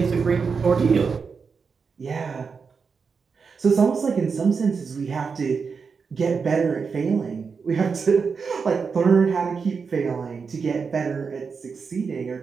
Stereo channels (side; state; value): left; quieter; 5.4 dB